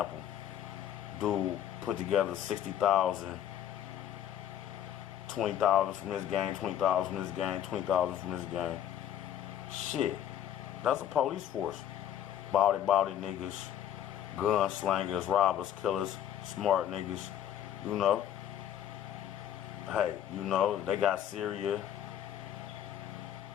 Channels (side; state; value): right; quieter; 10.6 dB